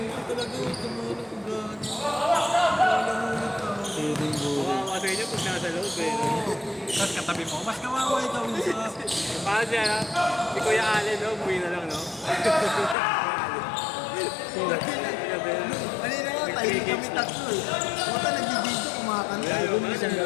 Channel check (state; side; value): drops out; right; at 13.0 s